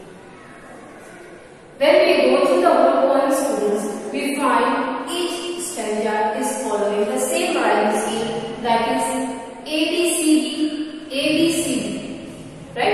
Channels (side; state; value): both; identical; correlation 1.00